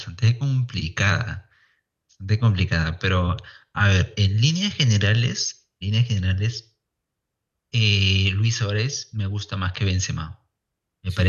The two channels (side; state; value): both; identical; correlation 1.00